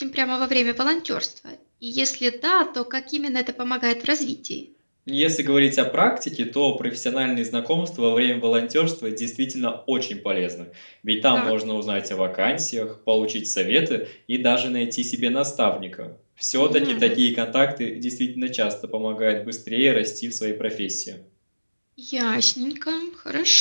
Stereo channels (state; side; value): inverted; both; correlation -1.00